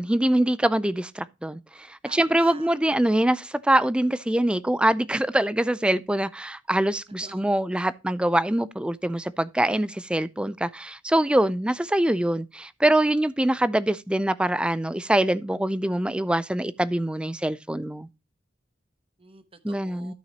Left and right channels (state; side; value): normal; both; correlation 0.93